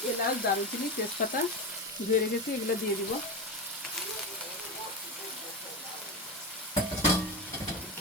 এলাচ, দারুচিনি, তেজপাতা ধুয়ে রেখেছি, এগুলো দিয়ে দিব।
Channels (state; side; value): normal; both; correlation 0.20